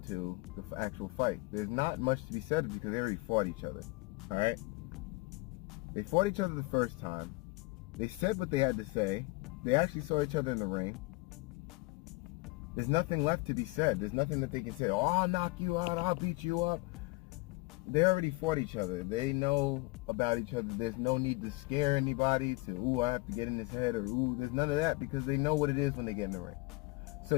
to the actual fight. There's not much to be said because they already fought each other. All right, they fought each other the first time. They said what they had to say. They actually saw each other in the ring. There's nothing left to be said. There's nothing that they can say, oh, I'll knock you out, I'll beat you up. They already fought each other. They know about each other. There's no need to scare anybody to, ooh, I have to get in his head, or ooh, there's none of that, because they know what it is when they get in the ring.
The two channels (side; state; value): right; quieter; 24.8 dB